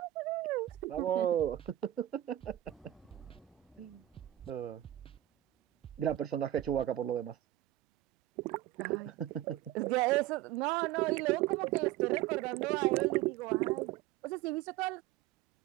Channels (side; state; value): left; quieter; 14.2 dB